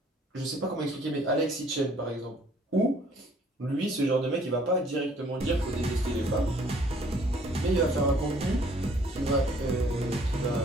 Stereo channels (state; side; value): normal; both; correlation 0.60